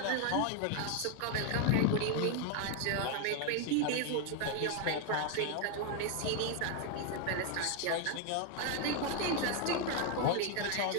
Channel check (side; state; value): both; different; correlation 0.01